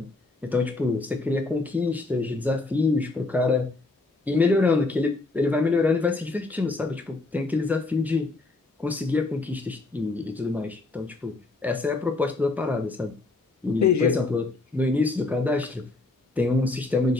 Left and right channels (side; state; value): right; quieter; 3.3 dB